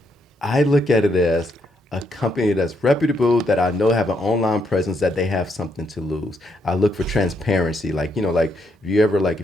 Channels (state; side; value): normal; both; correlation 0.76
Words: look at it as a company that's reputable, that I know have an online presence, that they have something to lose. I look for transparency. Like, like